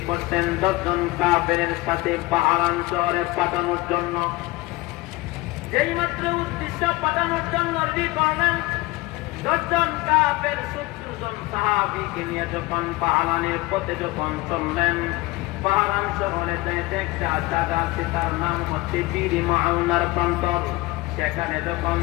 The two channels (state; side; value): quieter; right; 21.2 dB